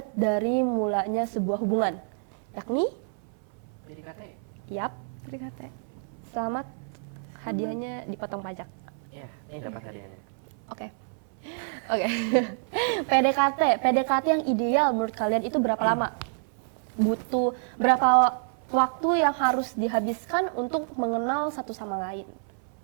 dari mulanya sebuah hubungan, yakni PDKT. yap, PDKT. selamat, hadiahnya dipotong pajak. Ya, ini dapat hadiahnya. Oke. PDKT yang ideal menurut kalian itu berapa lama? Butuh berapa waktu yang harus dihabiskan untuk mengenal satu sama lain?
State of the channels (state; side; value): silent; left; 59 dB below the other